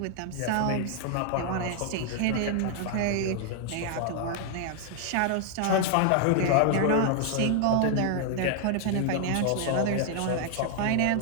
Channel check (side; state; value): both; different; correlation 0.00